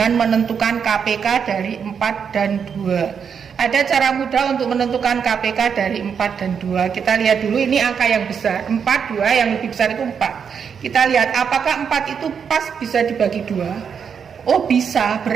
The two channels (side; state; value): left; quieter; 6.9 dB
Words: menentukan KPK dari 4 dan 2. Ada cara mudah untuk menentukan KPK dari 4 dan 2. Kita lihat dulu, ini angka yang besar. 4, 2, yang lebih besar itu 4. Kita lihat apakah 4 itu pas bisa dibagi 2. Oh bisa,